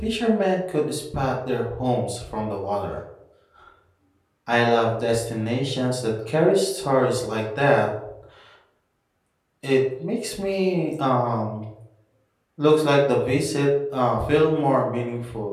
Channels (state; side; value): identical; both; correlation 1.00